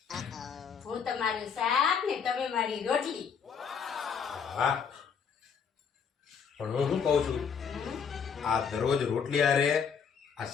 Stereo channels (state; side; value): quieter; right; 6.7 dB